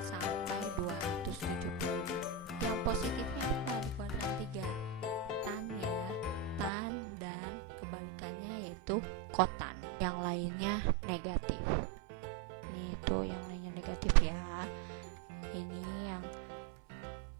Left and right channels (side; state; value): left; drops out; at 6.7 s